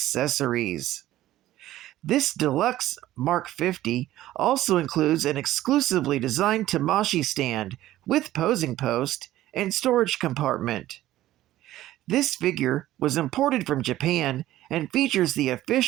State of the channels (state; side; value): quieter; left; 14.6 dB